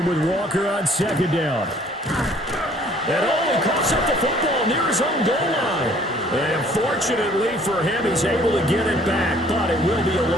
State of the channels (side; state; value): both; normal; correlation 0.58